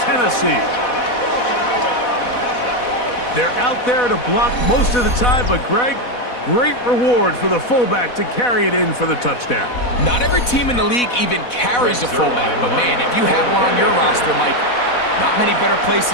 Tennessee. They're out there to block most of the time, but Greg, great reward for the fullback to carry it in for the touchdown. Not every team in the league even carries a fullback, but man, if you have one on your roster, Mike, not many better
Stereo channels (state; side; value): late; right; 4.1 ms